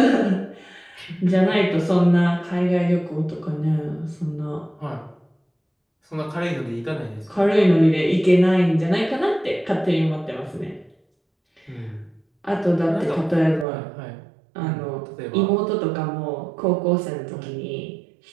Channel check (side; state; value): left; drops out; at 13.7 s